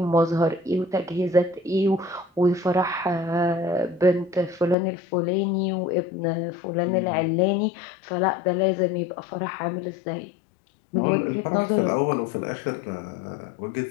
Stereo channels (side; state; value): right; drops out; at 4.8 s